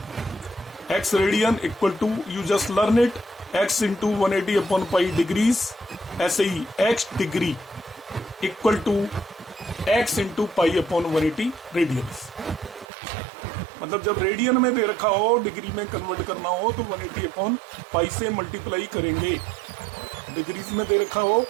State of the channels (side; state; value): left; drops out; at 12.9 s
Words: X radian equal to, you just learn it, x into 180 upon pi degrees, ऐसे ही x degree equal to x into pi upon 180 radians. मतलब जब रेडियन में दे रखा हो, डिग्री में कन्वर्ट करना हो तो 180 अपॉन पाई से मल्टीप्लाई करेंगे। डिग्रीज में दे रखा हो